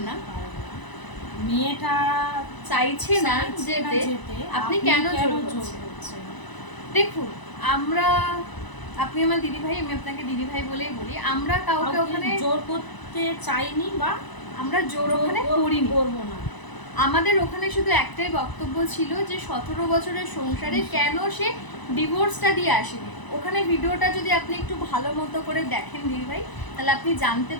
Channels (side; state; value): right; late; 1.0 ms